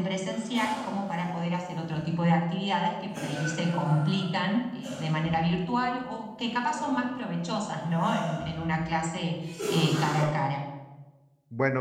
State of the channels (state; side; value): identical; both; correlation 1.00